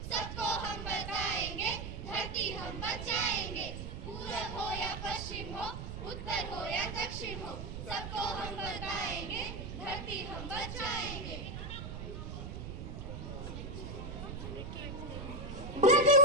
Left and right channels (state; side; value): noise; right; rumble, 7 dB below the sound